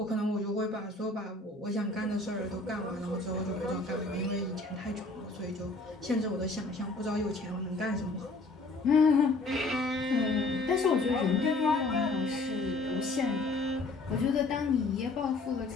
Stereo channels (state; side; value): quieter; right; 3.3 dB